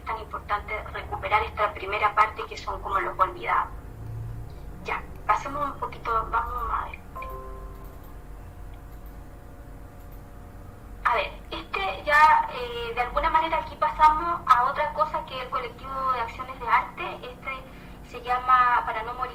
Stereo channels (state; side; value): identical; both; correlation 1.00